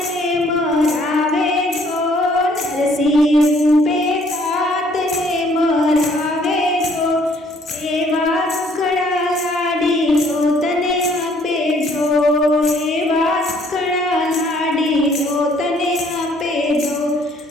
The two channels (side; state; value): both; normal; correlation 0.62